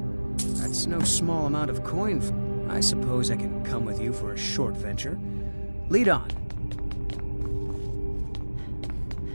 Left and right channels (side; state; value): both; inverted; correlation -1.00